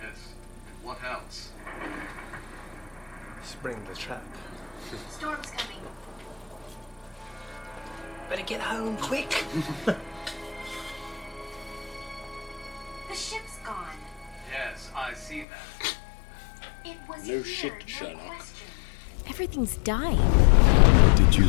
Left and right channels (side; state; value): right; drops out; at 15.5 s